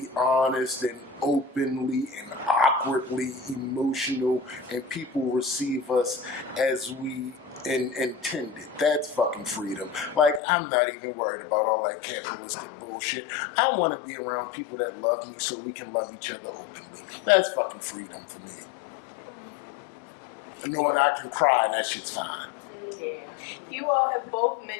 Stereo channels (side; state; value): right; drops out; at 10.4 s